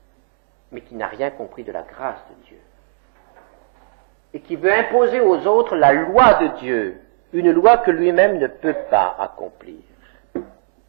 mais qui n'a rien compris de la grâce de Dieu, et qui veut imposer aux autres la loi de Dieu, une loi que lui-même ne peut pas accomplir.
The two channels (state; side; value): silent; left; 60 dB below the other